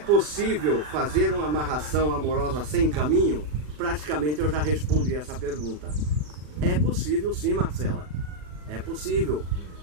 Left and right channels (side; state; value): left; late; 40 ms